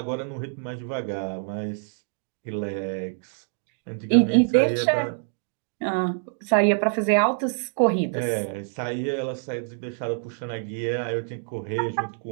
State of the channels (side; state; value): left; silent; 61 dB below the other